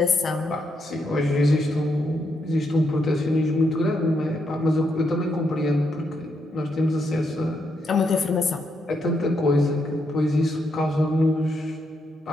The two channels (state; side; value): normal; both; correlation 0.79